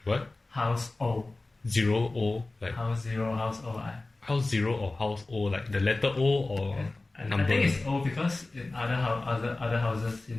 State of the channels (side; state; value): right; quieter; 3.1 dB